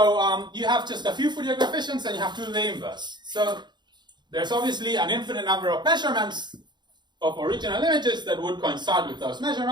you have just a few Fourier coefficients and you have to do the inverse. So there's obviously an infinite number of measurements of original images that would coincide with those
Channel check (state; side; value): late; left; 0.21 ms